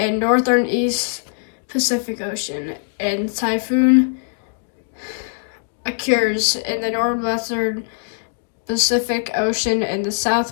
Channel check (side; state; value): right; silent; digital silence